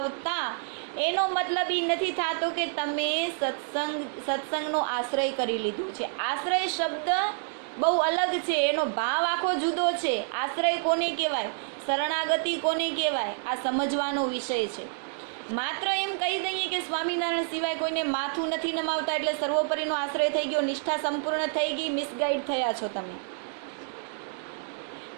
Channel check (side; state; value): left; silent; 59 dB below the other